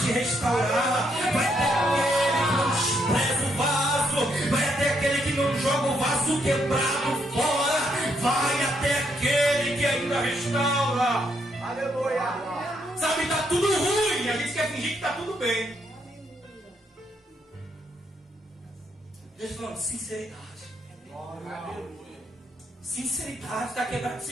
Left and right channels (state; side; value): normal; both; correlation 0.75